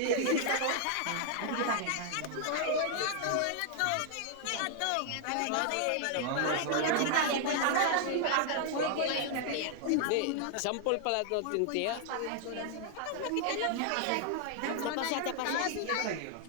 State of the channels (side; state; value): both; different; correlation 0.00